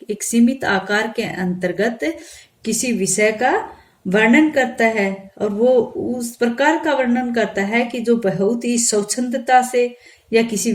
एक सीमित आकार के अंतर्गत किसी विषय का वर्णन करता है, और वो उस प्रकार का वर्णन करता है कि जो बहुत ही स्वच्छंदता से या किसी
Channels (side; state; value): both; identical; correlation 1.00